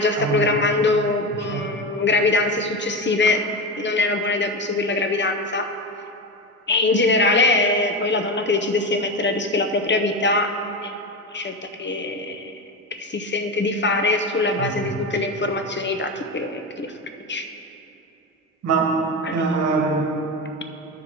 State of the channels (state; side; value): normal; both; correlation 0.19